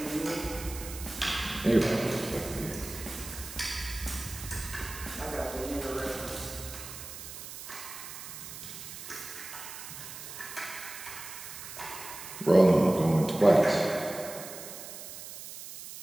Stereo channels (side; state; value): right; noise; hiss, 11 dB below the sound